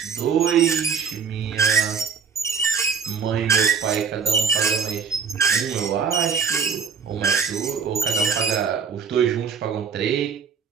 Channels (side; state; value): left; quieter; 6.3 dB